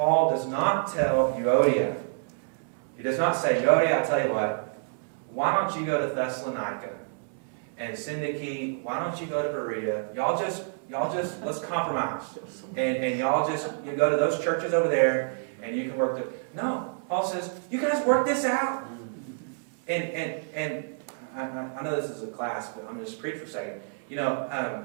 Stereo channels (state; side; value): silent; left; digital silence